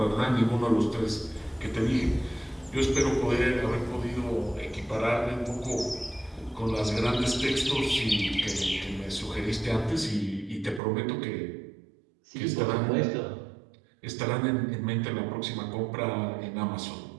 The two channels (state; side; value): drops out; left; at 10.8 s